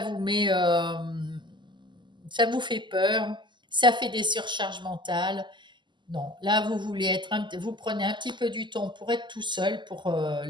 met, ça vous fait peur, ça fait des surcharges mentales. Non, là vous voulez vous prenez un petit peu du temps pour être tout seul, pour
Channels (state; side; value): late; left; 0.22 ms